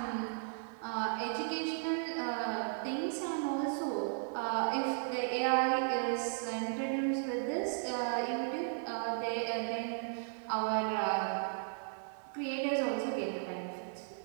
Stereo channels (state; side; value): silent; left; 54 dB below the other